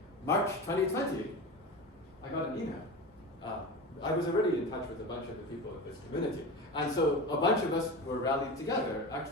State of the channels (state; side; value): normal; both; correlation 0.27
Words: March 2020, I got an email. I was already in touch with a bunch of the people in this community. And so a bunch of us were rallied together,